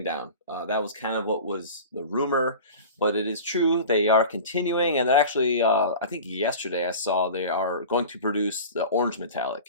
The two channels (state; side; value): inverted; both; correlation -0.35